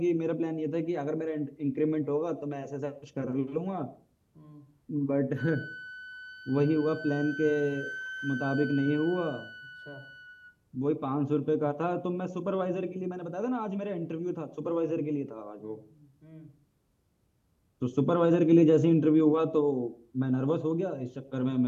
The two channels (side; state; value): both; identical; correlation 1.00